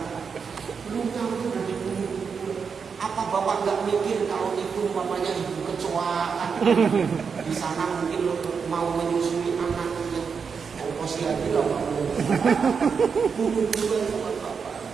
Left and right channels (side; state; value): left; quieter; 5.9 dB